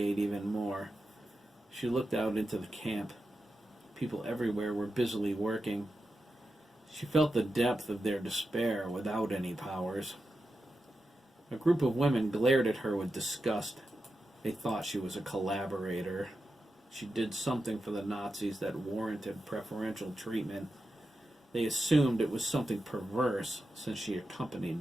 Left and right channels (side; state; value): both; normal; correlation 0.90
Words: even more. She looked out into the camp. People everywhere were busily working. She felt the depth of their despair without any powers. A group of women glared at her with disgust. They thought she was a collaborator. She did something for the Nazis that warranted preferential treatment. They assumed it was something perverse, since she